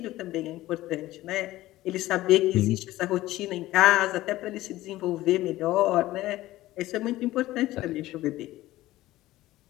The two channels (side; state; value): right; quieter; 16.4 dB